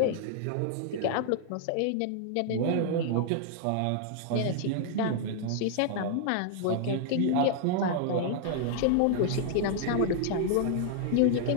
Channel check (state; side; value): different; both; correlation 0.00